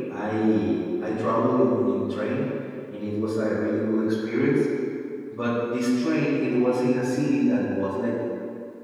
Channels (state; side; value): identical; both; correlation 1.00